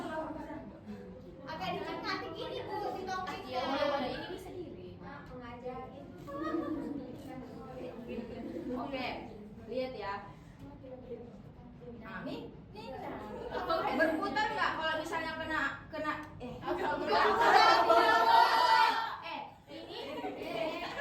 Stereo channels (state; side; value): identical; both; correlation 1.00